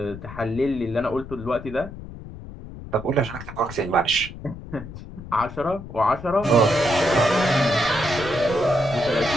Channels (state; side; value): noise; left; rumble, 13 dB below the sound